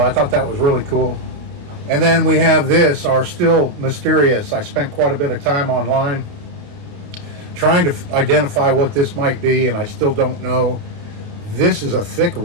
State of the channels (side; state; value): left; late; 29 ms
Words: I thought that was really cool. And then we have this, our still mysterious. I spent quite a bit of time online trying to identify what this might be, and I still don't know. This is a thick